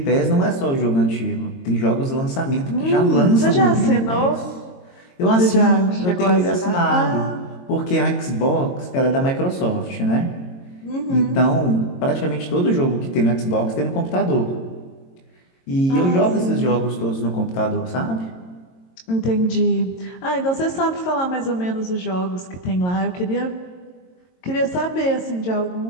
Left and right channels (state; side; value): late; right; 22 ms